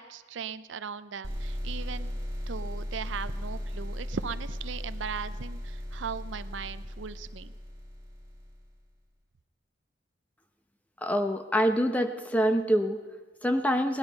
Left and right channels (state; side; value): normal; both; correlation 0.77